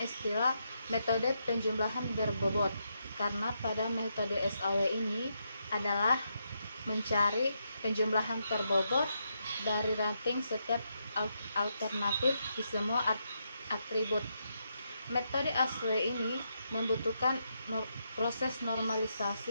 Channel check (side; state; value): both; inverted; correlation -0.81